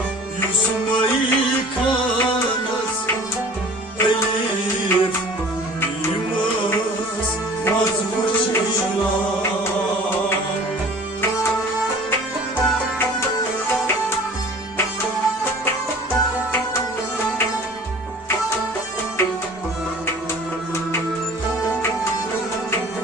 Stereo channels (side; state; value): both; normal; correlation 0.45